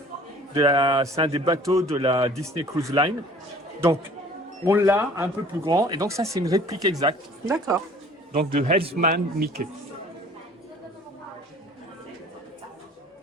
C'est un des bateaux de la Disney Cruise Line. Donc, on l'a un peu plus grand. Et donc, ça, c'est une réplique exacte. D'accord. Donc, de Helmsman Mickey.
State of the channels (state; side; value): normal; both; correlation 0.50